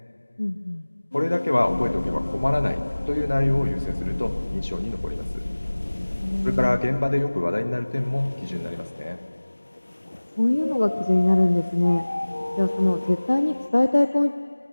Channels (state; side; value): inverted; both; correlation -1.00